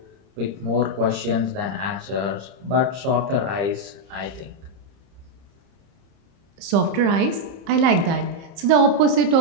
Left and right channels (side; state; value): left; late; 30 ms